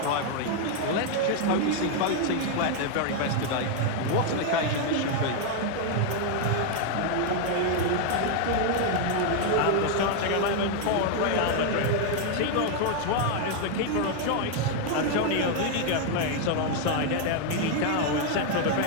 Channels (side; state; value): both; different; correlation 0.00